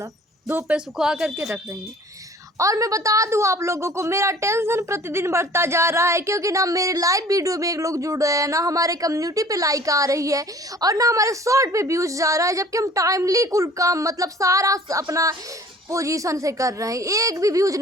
धूप पे सुखा करके रख रही हैं। और मैं बता दूं आप लोगों को, मेरा टेंशन प्रतिदिन बढ़ता जा रहा है क्योंकि ना मेरे लाइव वीडियो में एक लोग जुड़ रहे हैं, ना हमारे कम्युनिटी पे लाइक आ रही है और ना हमारे शॉर्ट पे व्यूज जा रहा है, जबकि हम टाइमली कुल काम मतलब सारा अपना पोजीशन से कर रहे हैं, एक भी व्यूज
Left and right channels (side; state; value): both; normal; correlation 0.50